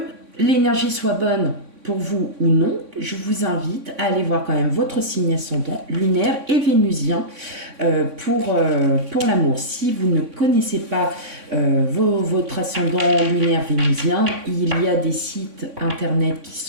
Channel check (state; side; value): late; left; 3.6 ms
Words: l'énergie soit bonne pour vous ou non, je vous invite à aller voir quand même votre signe ascendant lunaire et vénusien pour l'amour. Si vous ne connaissez pas votre ascendant lunaire vénusien, il y a des sites internet qui